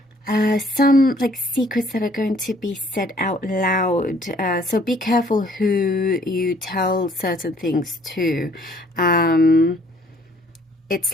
some like secrets that are going to be said out loud. So be careful who you tell certain things to.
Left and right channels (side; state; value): both; normal; correlation 0.60